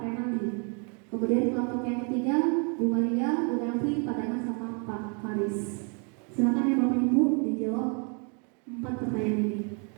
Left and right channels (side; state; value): left; quieter; 37.0 dB